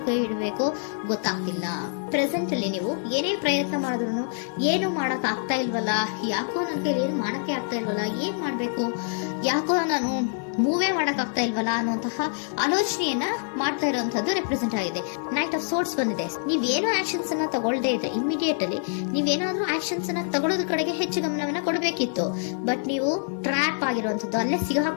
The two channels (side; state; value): right; silent; 61 dB below the other